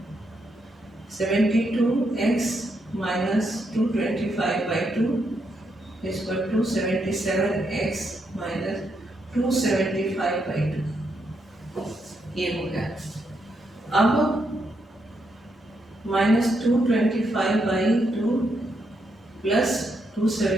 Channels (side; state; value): both; normal; correlation 0.80